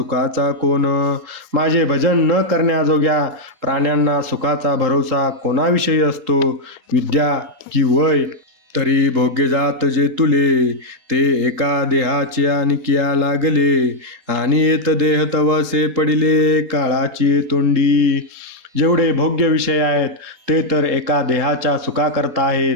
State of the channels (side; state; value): left; late; 3.8 ms